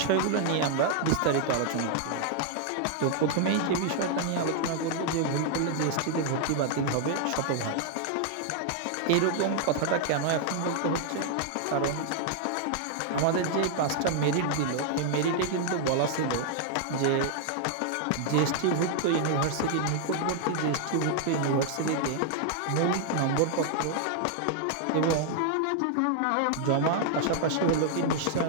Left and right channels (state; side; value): different; both; correlation 0.00